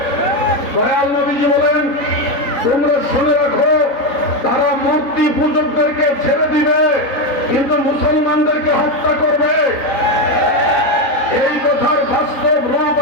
দয়াল নবীজি বলেন, তোমরা শুনে রাখো, তারা মূর্তি পূজকদেরকে ছেড়ে দিবে কিন্তু মুসলমানদেরকে হত্যা করবে। এই কথার বাস্তব রূপ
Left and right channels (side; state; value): right; late; 3.8 ms